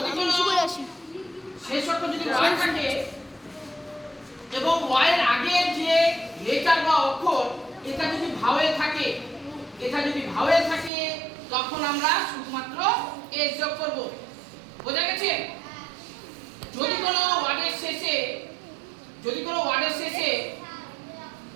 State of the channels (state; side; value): drops out; left; at 10.9 s